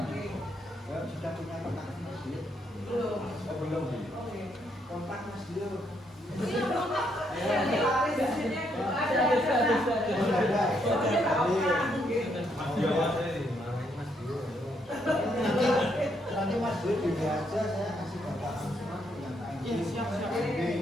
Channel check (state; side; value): normal; both; correlation 0.74